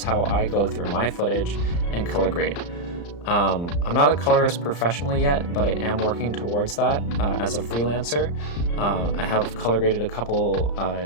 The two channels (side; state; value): right; late; 35 ms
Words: how I go through my footage and color grade. I'm not a colorist professionally yet, but I am working towards that as a freelancer. I have color graded a couple